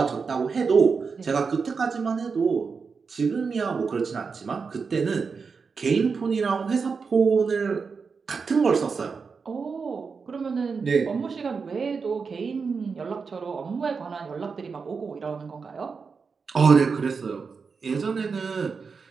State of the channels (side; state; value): left; quieter; 5.2 dB